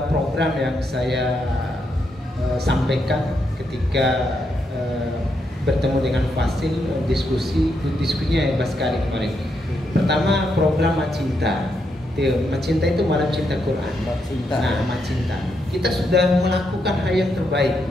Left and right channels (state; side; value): normal; both; correlation 0.80